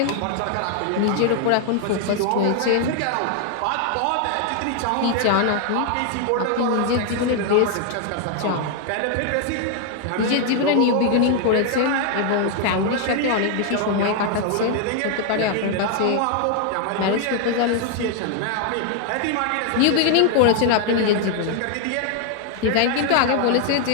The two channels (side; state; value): both; different; correlation 0.00